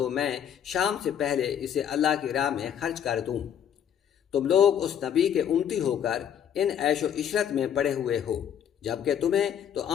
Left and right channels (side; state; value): right; quieter; 9.1 dB